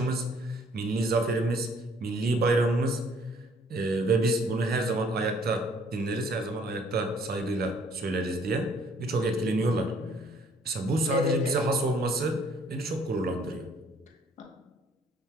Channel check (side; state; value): both; normal; correlation 0.61